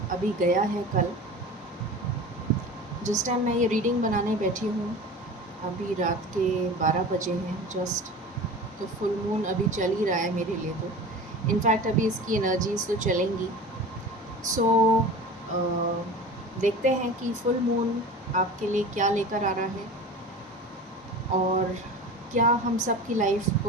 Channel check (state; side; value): normal; both; correlation 0.35